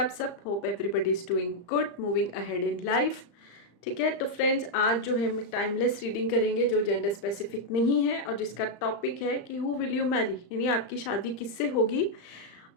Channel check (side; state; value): right; late; 35 ms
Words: सब? Hope everybody is doing good, moving ahead in life. ठीक है, तो फ्रेंड्स आज जो है हम टाइमलेस रीडिंग करेंगे जो जेंडर स्पेसिफिक नहीं है और जिसका टॉपिक है कि हु विल यू मैरी, यानी आपकी शादी किससे होगी।